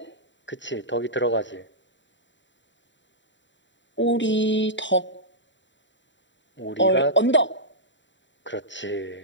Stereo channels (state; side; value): late; right; 0.54 ms